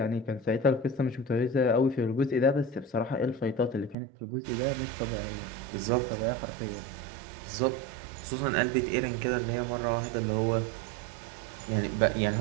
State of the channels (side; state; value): left; drops out; at 4.0 s